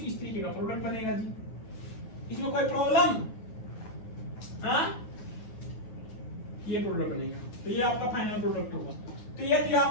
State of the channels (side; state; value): right; late; 9.2 ms